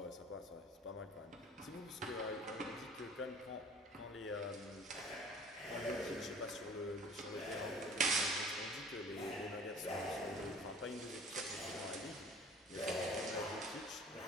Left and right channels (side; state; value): both; normal; correlation 0.48